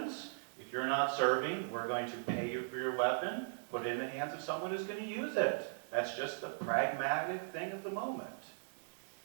If you're not serving, we're going to pay you for your weapon, put it in the hands of someone who's going to use it. That's just the pragmatic thing of the moment.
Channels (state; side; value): silent; left; digital silence